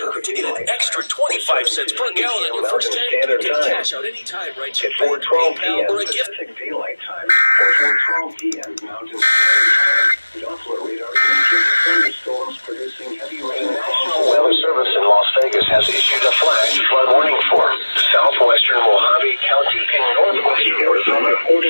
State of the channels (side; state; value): both; inverted; correlation -1.00